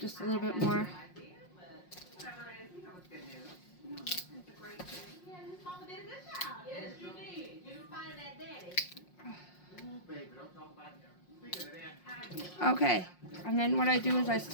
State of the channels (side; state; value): right; late; 5.6 ms